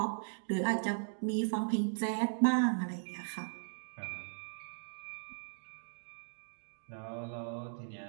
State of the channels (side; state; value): left; silent; digital silence